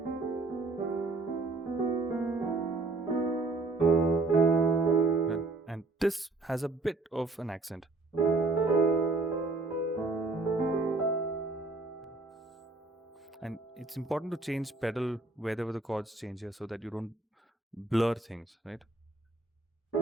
And this has a bit of an accent. And it's important to change pedal wherever the chords change here so that you don't blur things, right?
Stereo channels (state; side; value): quieter; left; 3.3 dB